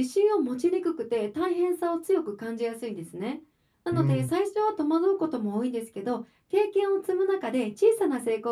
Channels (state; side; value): identical; both; correlation 1.00